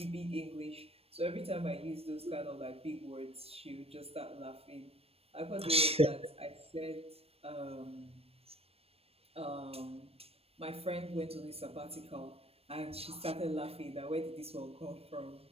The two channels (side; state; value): left; late; 0.28 ms